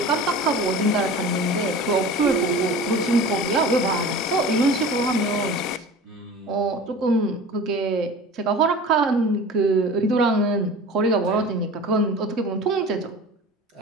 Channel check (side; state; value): both; normal; correlation 0.38